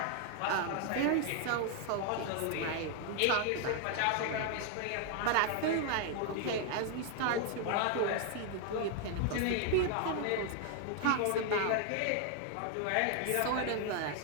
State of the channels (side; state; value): both; different; correlation 0.00